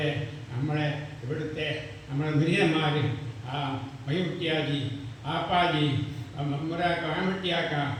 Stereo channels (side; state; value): both; identical; correlation 1.00